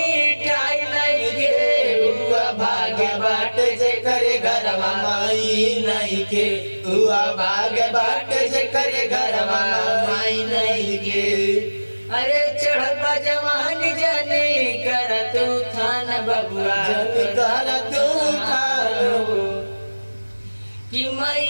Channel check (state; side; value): inverted; both; correlation -1.00